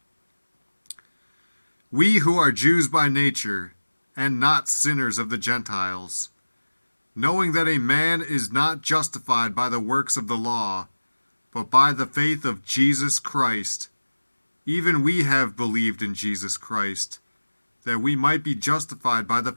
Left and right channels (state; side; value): inverted; both; correlation -1.00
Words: We who are Jews by nature, and not sinners of the Gentiles, knowing that a man is not justified by the works of the law, but by the faith of Jesus Christ, even we have believed in Jesus Christ, that we might be justified by the